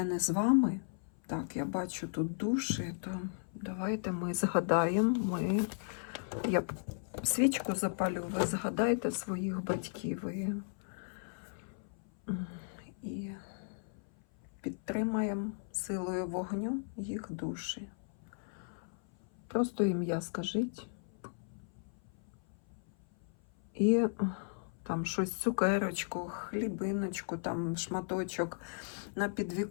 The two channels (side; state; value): right; silent; 54 dB below the other